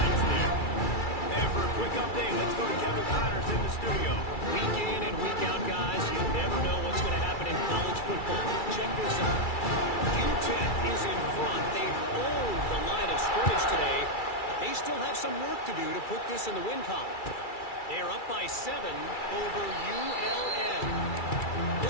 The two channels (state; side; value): late; right; 2.3 ms